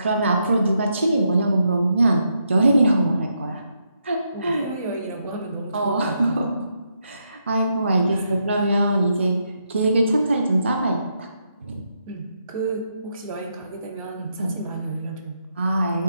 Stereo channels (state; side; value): inverted; both; correlation -0.80